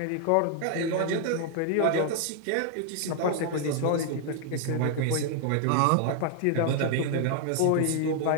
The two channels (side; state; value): both; different; correlation 0.00